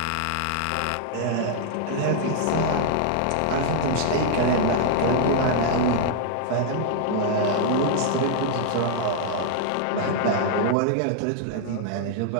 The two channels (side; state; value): both; different; correlation -0.01